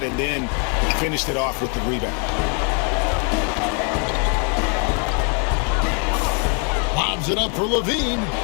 and then finished it off with the rebound. Lobs it up for Levine.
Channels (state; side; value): quieter; right; 39.5 dB